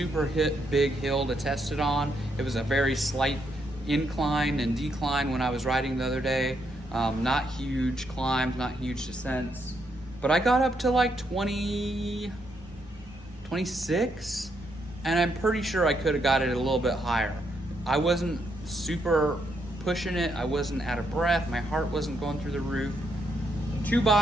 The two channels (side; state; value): both; normal; correlation 0.77